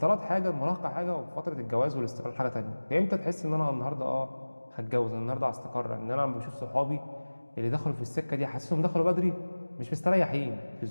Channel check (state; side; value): inverted; both; correlation -1.00